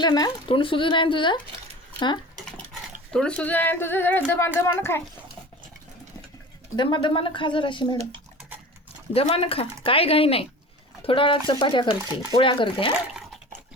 ना, तोंड सुजून आहे तुझं. तोंड सुजून आहे तुझं. जरा दमानं खाय, दमानं खा जराशी मॅडम, दमानं खा. काय घाई नाही. थोडा वेळात चपात्या करते, पोळ्या करते.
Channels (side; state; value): both; normal; correlation 0.38